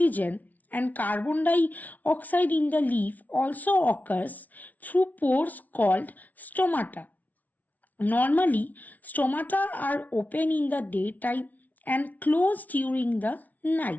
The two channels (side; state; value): right; late; 0.075 ms